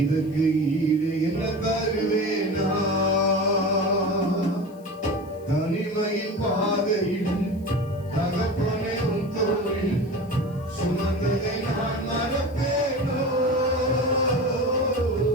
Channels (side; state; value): left; noise; hiss, 29 dB below the sound